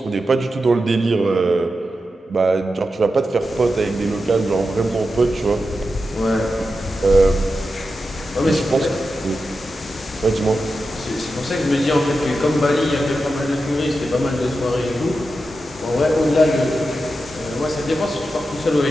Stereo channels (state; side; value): normal; both; correlation 0.90